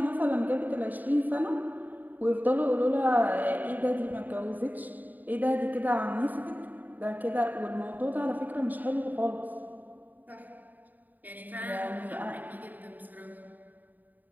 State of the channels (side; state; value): left; late; 0.085 ms